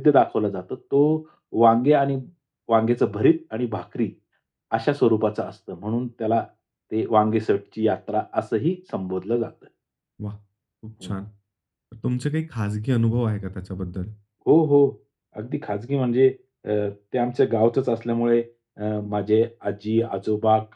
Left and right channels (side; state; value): both; identical; correlation 1.00